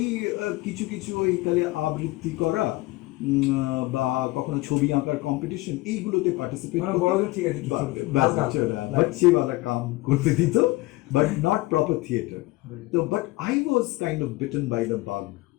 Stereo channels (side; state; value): right; quieter; 20.5 dB